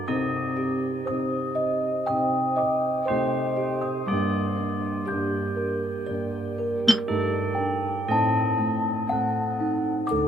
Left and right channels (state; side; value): normal; both; correlation 0.74